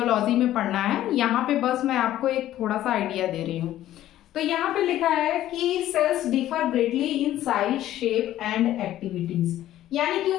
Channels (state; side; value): quieter; right; 13.3 dB